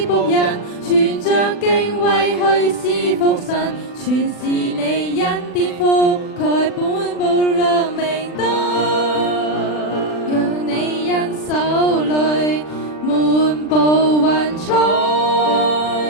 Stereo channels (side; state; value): right; late; 40 ms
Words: 僕人，存着敬畏去侍奉神，全是你恩典覆蓋本部亮明燈，讓你因手裏滿布雲彩，